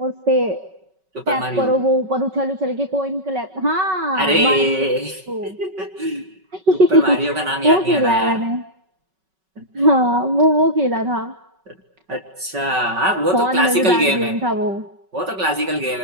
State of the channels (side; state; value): left; late; 5.3 ms